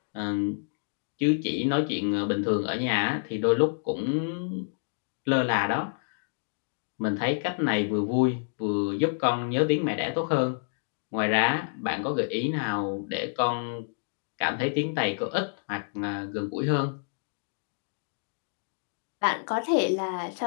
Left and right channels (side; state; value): right; silent; digital silence